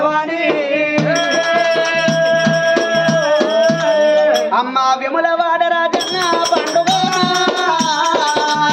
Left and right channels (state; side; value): identical; both; correlation 1.00